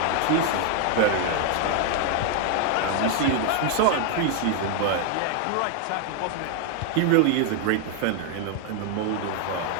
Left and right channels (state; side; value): different; both; correlation 0.00